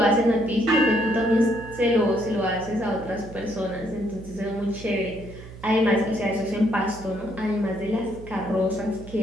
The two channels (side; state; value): right; noise; hum, 16 dB below the sound